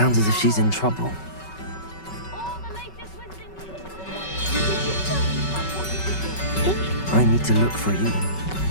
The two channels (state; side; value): late; right; 5.3 ms